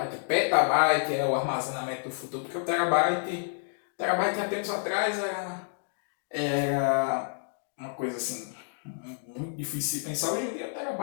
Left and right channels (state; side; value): silent; right; digital silence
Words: é o armazenamento do futuro, porque o terabyte há tempos atrás era uma coisa assim muito difícil de pensar. Hoje em dia o